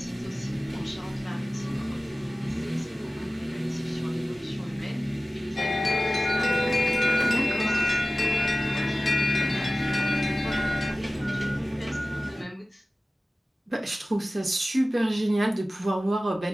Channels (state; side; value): normal; both; correlation 0.96